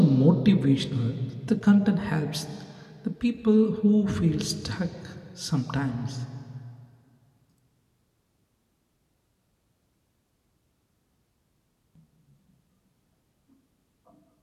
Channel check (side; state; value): both; identical; correlation 1.00